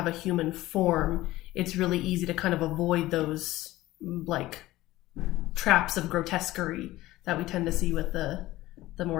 a human form, it's really easy to kind of avoid those like traps of grotesquerie that we tend to see with the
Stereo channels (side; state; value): right; quieter; 17.0 dB